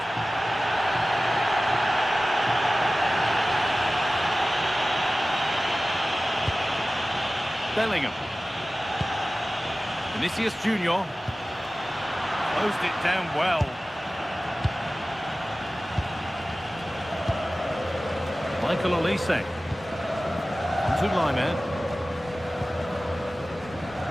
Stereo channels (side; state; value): both; normal; correlation 0.96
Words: Bellingham. Vinicius Junior. Closed it down well. Michael Olise. To Lyman.